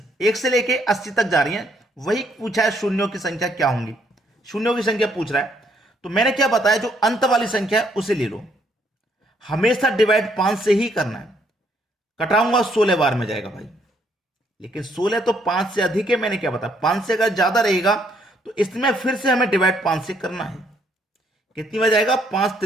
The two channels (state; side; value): normal; both; correlation 0.70